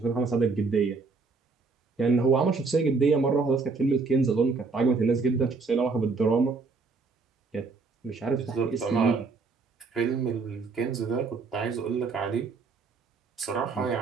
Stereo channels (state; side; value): quieter; left; 4.4 dB